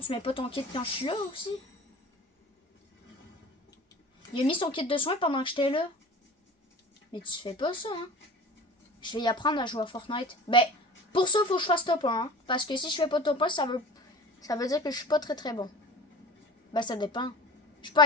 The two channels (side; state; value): both; normal; correlation 0.40